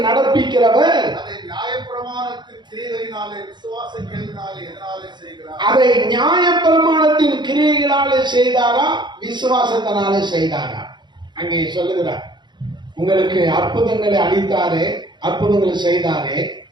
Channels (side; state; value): left; late; 0.22 ms